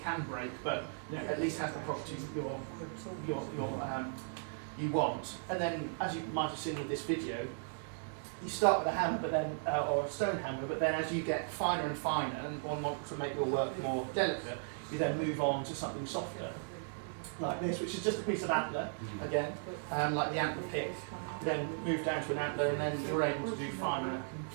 can break, but at least has the properties that you want. And then, as you might have seen in this video, you start with a hammer, but then or a stone hammer, but then as you get finer and finer and want to make your work more delicate, you then move on to something softer, like this, which is just a piece of antler again, like the antler pick. You then move down to an antler, and then you're able to do finer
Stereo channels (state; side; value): silent; left; digital silence